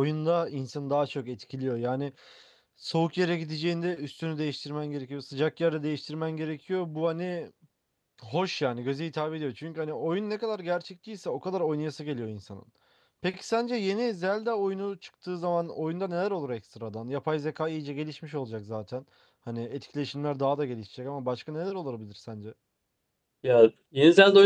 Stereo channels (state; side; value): identical; both; correlation 1.00